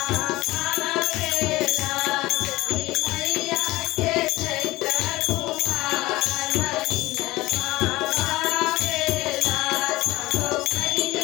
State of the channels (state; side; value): quieter; right; 19.3 dB